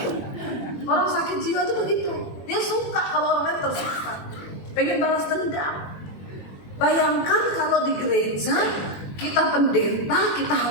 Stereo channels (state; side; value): late; right; 21 ms